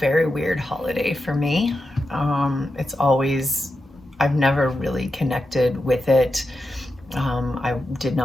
weird holiday for me. I've never really connected with it. I did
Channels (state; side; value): normal; both; correlation 0.88